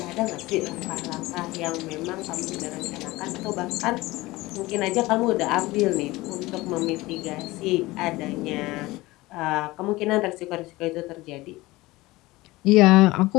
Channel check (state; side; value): quieter; right; 19.9 dB